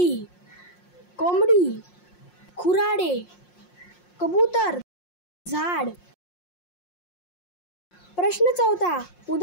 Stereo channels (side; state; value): right; late; 5.6 ms